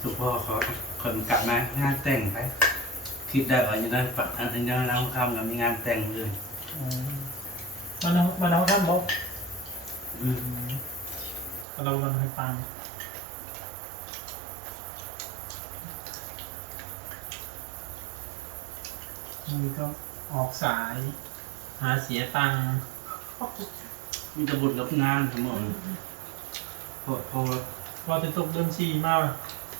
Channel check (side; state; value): left; drops out; at 11.7 s